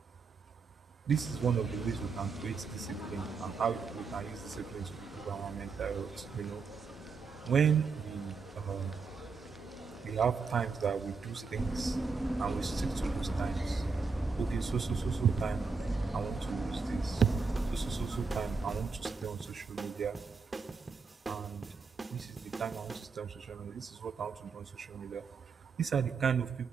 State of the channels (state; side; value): quieter; left; 4.9 dB